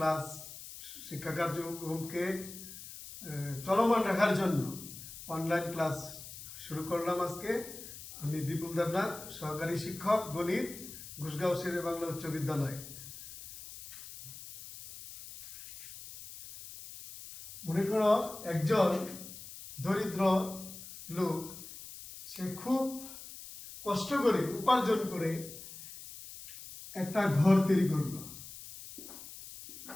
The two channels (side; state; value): left; noise; hiss, 13 dB below the sound